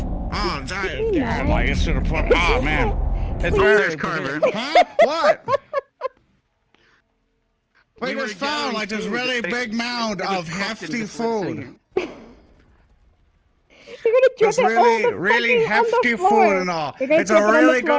Oh, yeah, like it's to the point. Oh man, it's very. There's Carver. Huh? What? We We were just found gathering like this food. really They- big mound it was of cooked and hefty just went food. singing. You're gonna drip It's it really, all the really fucking on the hefty floor. food and all. You're gonna It's drip a it on the really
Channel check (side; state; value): both; identical; correlation 1.00